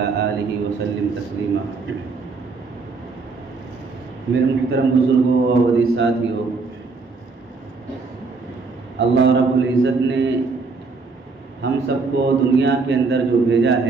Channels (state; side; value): quieter; left; 4.3 dB